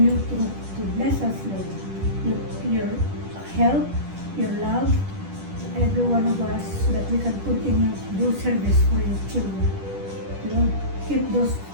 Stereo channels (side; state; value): left; late; 10 ms